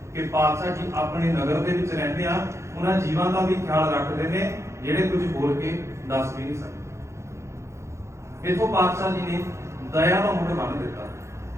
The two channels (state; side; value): late; left; 0.14 ms